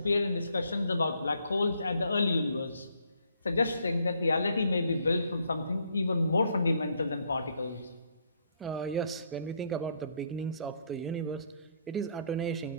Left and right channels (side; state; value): both; inverted; correlation -0.69